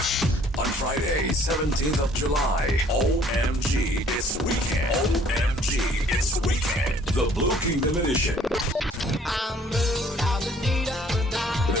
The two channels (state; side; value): normal; both; correlation 0.58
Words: On Friday, 17th of July, OMG, it's weekend. OMG, it's weekend. The Blue Kingdom Edition.